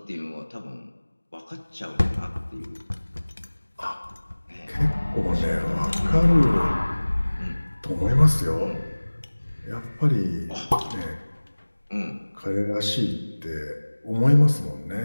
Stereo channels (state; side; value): inverted; both; correlation -1.00